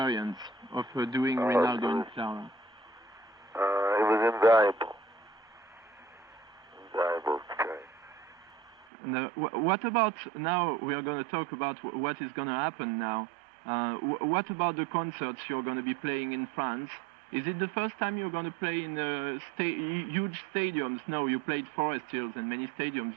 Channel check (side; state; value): left; drops out; at 8.8 s